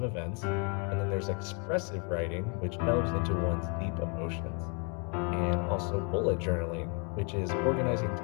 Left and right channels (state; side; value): quieter; right; 36.2 dB